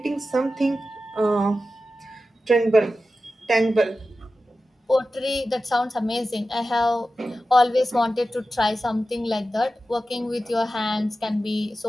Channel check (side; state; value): both; normal; correlation 0.93